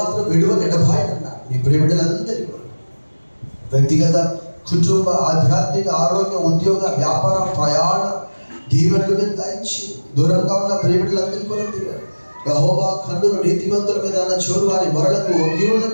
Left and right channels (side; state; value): both; inverted; correlation -1.00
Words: విడువని ఎడబాయను అన్నారు. నీ ప్రియబిడ్డలందరికీ కూడా వ్యక్తిగత, కుటుంబ, ఆధ్యాత్మిక, ఆరోగ్య, ఉద్యోగ, వ్యాపార, ప్రయాణ దీవెనలు మీద దాయించి దూరంగా ఉన్న ప్రియబిడ్డలందరికీ కూడా దిగారు. యెహోవా కన్నులు నీతిమంతుల మీద అన్న చోరు వారి మొరలకు ఒగ్గి